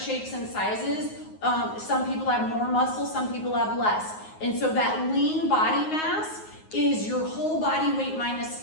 and sizes. Some people have more muscle, some people have less. And so that lean body mass is your whole body weight minus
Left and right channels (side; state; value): right; late; 9.5 ms